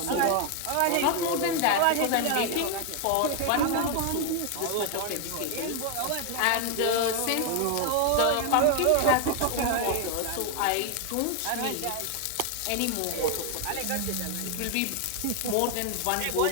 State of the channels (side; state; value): both; different; correlation 0.01